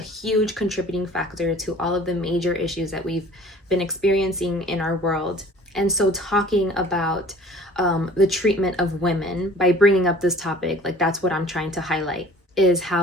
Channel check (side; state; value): both; normal; correlation 0.49